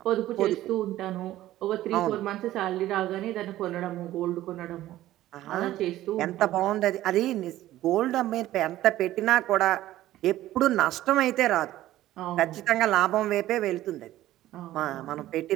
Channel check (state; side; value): quieter; left; 14.6 dB